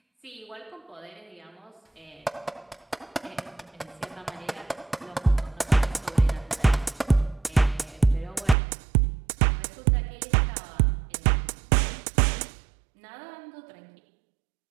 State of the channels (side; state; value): left; drops out; at 8.6 s